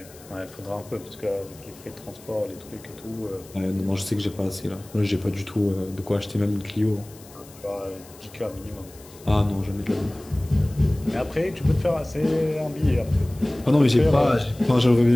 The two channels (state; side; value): noise; left; hiss, 22 dB below the sound